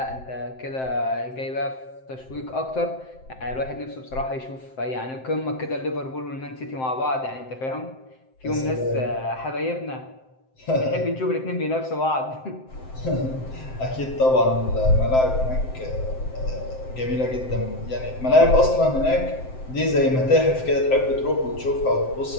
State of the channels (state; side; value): late; right; 7.7 ms